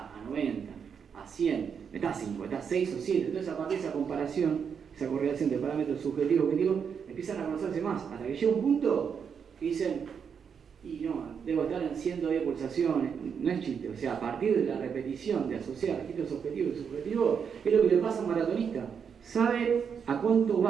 90, a 100. Estás 5, estás 6 o 7. Entonces, a partir de esa comparación, esa correlación de parámetros subjetivos y objetivos, empiezan a conocerse más. Hasta que llega un punto que dicen, y no, debo estar en 110 pulsaciones. No es chiste. O sea, a partir de la repetición de asociar registros objetivos y subjetivos, es lo que le pasa a un maratonista. Sabe a cuánto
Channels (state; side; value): quieter; left; 6.9 dB